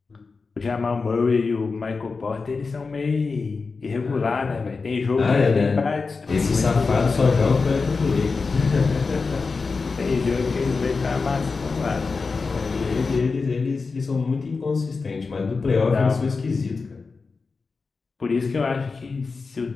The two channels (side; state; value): right; quieter; 4.4 dB